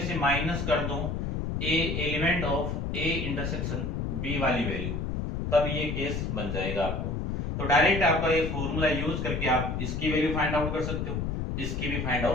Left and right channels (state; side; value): noise; left; rumble, 2 dB below the sound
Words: से माइनस कर दूं A element of A intersection B वाली वैल्यू, तब ये केस बन जाएगा आपको। तो डायरेक्ट आपका ये फॉर्मूला यूज करके आप इसकी वैल्यू फाइंड आउट कर सकते हो, इसकी भी फाइंड